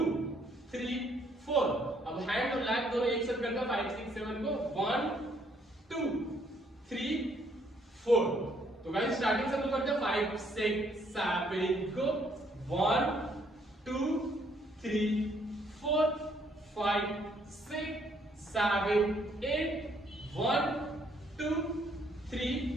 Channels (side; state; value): both; normal; correlation 0.68